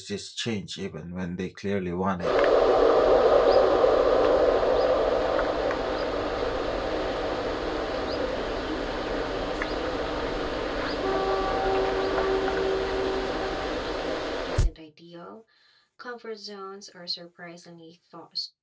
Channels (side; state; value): both; identical; correlation 1.00